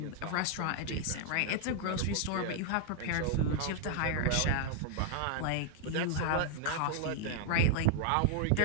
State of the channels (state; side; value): different; both; correlation 0.00